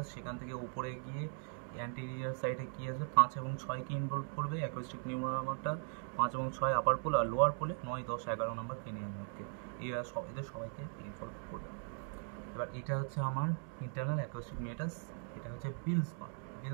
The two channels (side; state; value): left; silent; 52 dB below the other